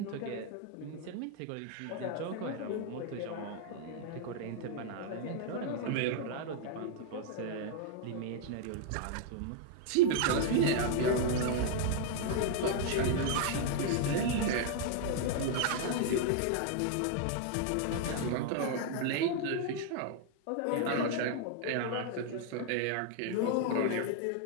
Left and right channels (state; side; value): different; both; correlation 0.00